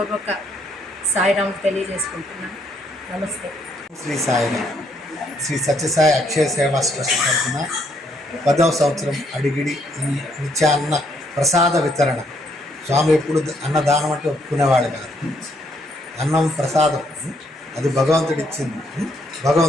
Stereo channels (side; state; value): both; normal; correlation 0.71